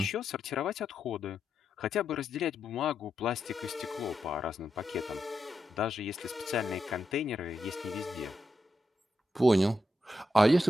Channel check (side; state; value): both; normal; correlation 0.85